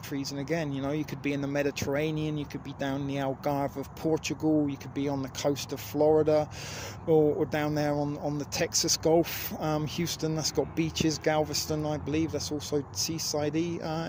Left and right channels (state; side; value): identical; both; correlation 1.00